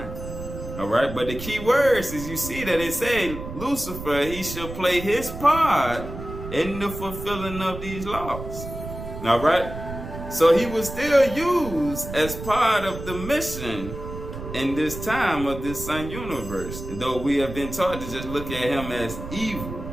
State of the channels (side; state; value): right; noise; rumble, 9 dB below the sound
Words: Alright, but the key words is you see that it say Lucifer, he shall play his part in the fulfilling of these laws. Alright, so he was still used as part of the mission in this time of this sun universe, though we have been taught to just look at him as evil